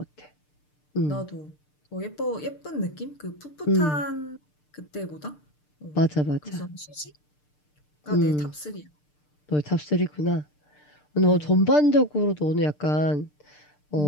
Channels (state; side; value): late; right; 6.7 ms